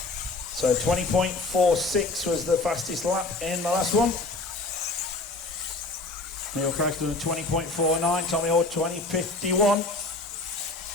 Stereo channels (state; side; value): quieter; right; 3.3 dB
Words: So 20.46 was the fastest lap in the last one. Neil Cragg's doing a 20.49, Tommy Hall 20.51.